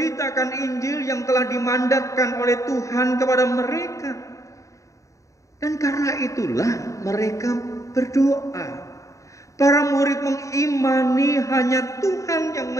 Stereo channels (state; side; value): late; right; 0.15 ms